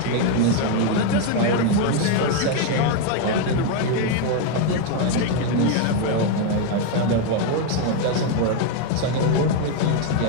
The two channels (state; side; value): different; both; correlation 0.01